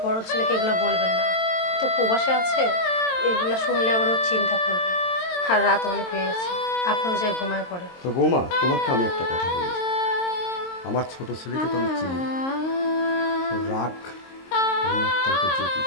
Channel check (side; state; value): right; late; 22 ms